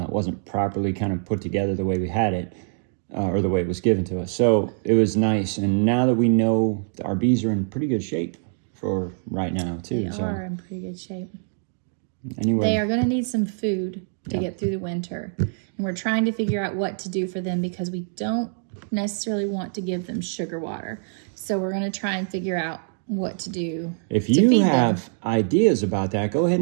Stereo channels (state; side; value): silent; left; digital silence